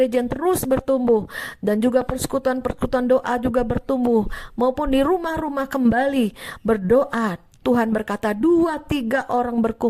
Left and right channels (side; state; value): both; identical; correlation 1.00